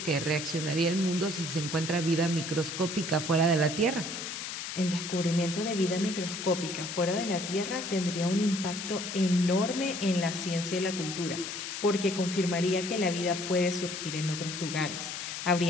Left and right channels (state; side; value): noise; left; hiss, 6 dB below the sound